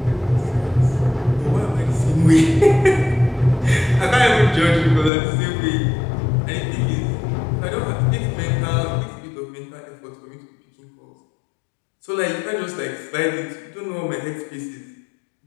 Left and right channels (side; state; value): right; drops out; at 5.1 s